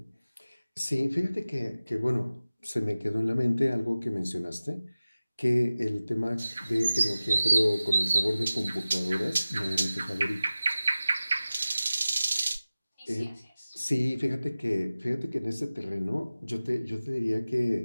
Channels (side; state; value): both; inverted; correlation -0.96